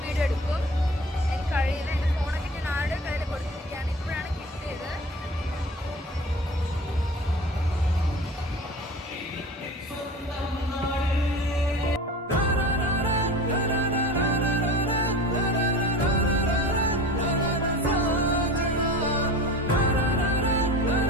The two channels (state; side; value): normal; both; correlation 0.36